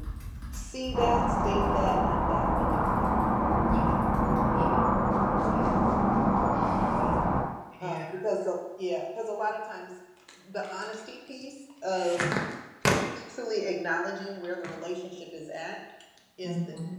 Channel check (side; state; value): both; identical; correlation 1.00